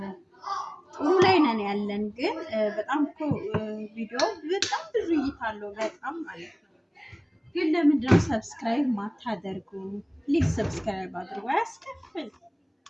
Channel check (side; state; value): both; identical; correlation 1.00